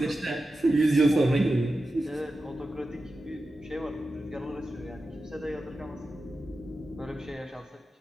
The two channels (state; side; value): normal; both; correlation 0.92